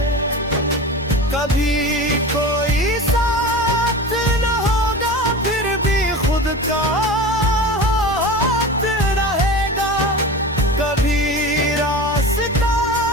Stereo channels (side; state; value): both; normal; correlation 0.31